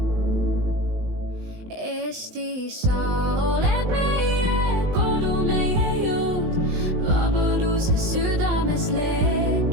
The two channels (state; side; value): late; left; 19 ms